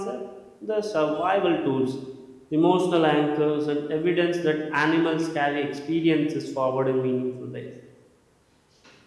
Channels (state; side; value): identical; both; correlation 1.00